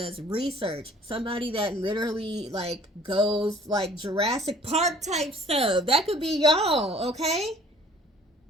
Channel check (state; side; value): normal; both; correlation 0.53